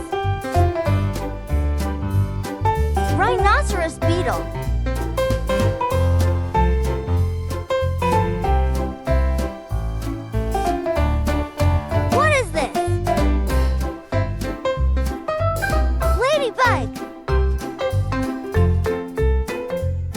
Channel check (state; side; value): identical; both; correlation 1.00